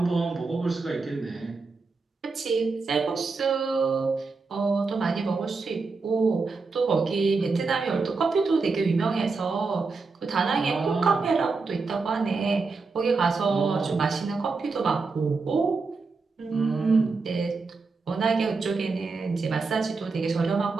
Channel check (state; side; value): quieter; left; 4.2 dB